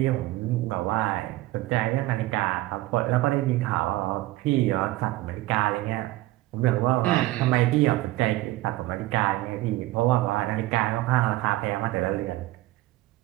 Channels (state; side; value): quieter; left; 17.7 dB